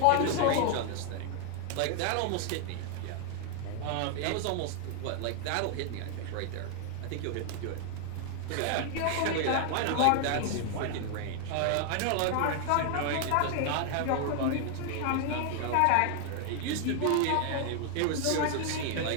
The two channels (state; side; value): different; both; correlation 0.00